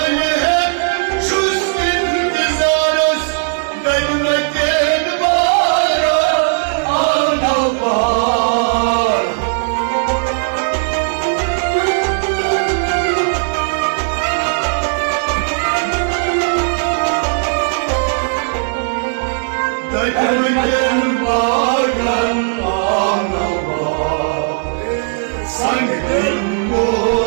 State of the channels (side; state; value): left; silent; digital silence